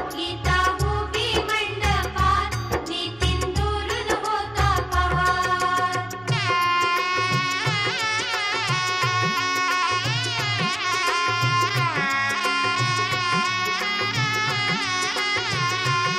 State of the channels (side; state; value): right; noise; hum, 26 dB below the sound